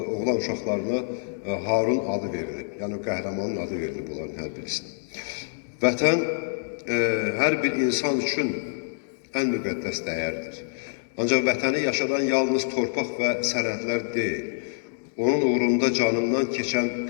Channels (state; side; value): silent; right; digital silence